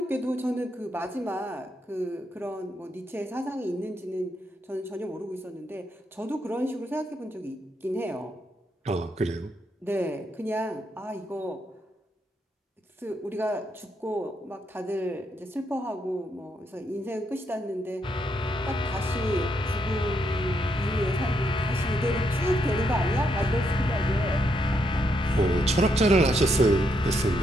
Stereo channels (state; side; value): normal; both; correlation 0.78